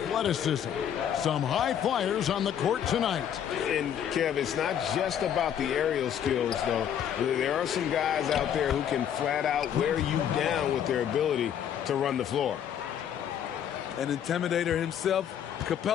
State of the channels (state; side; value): quieter; right; 9.3 dB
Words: Some high flyers on the court tonight. And, Kev, it's not just about the aerial skills, though. There are some guys out there who can flat out wear you down with their ability to run the floor. An intimidator himself,